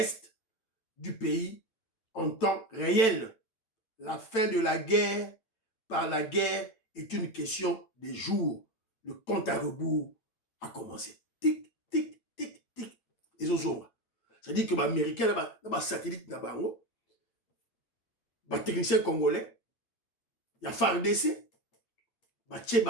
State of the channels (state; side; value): late; right; 8.9 ms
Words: du pays en temps réel. La fin de la guerre par la guerre est une question des jours. Le compte à rebours a commencé. Tic, tic, tic, tic. Et c'est-à-dire que les Américains, les satellites, les techniciens congolais, il y a FARDC, il y